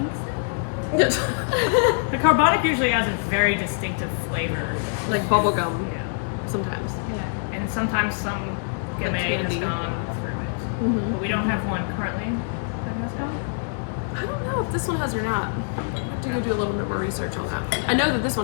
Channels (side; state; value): right; silent; digital silence